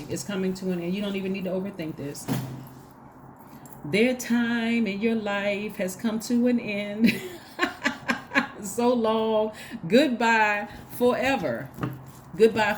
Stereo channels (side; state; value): both; identical; correlation 1.00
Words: It's coming to an end. You don't even need to overthink this. Their time in your life has come to an end. So long. Goodbye forever. Goodbye